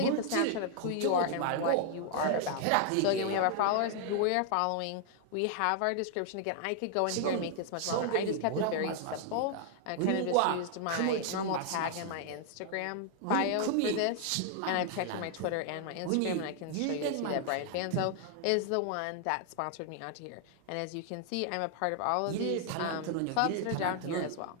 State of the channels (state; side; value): different; both; correlation 0.00